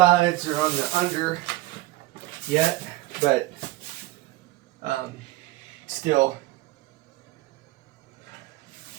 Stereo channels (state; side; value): quieter; left; 17.6 dB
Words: or on the under yet, but still,